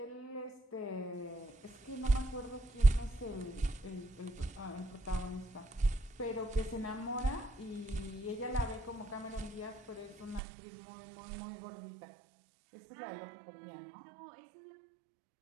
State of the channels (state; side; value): drops out; left; at 10.4 s